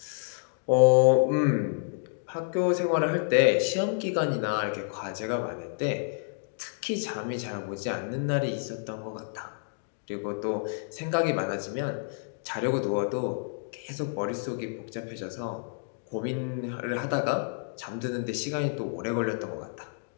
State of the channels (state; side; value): silent; right; digital silence